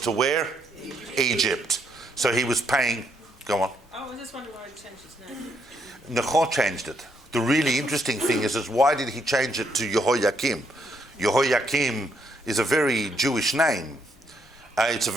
to where? Egypt. So he was paying, go on. Oh, I just wondering why he changed his name. Necho changed it. The really interesting thing is why did he change it to Jehoiakim? Jehoiakim is a very Jewish name. It's a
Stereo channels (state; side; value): normal; both; correlation 0.74